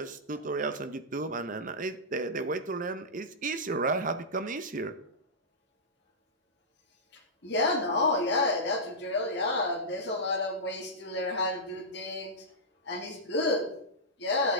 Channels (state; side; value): normal; both; correlation -0.13